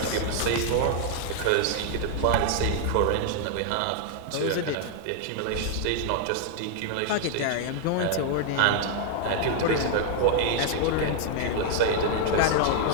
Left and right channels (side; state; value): both; different; correlation 0.00